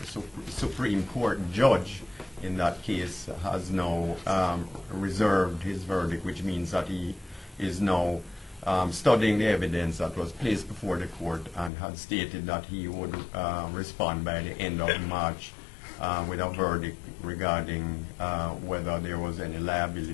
Supreme Court judge in that case has now reserved his verdict, which means that he is now studying the evidence that was placed before the court and had stated that he would respond by the end of March with a verdict regarding whether there was any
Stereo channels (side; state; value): right; drops out; at 11.7 s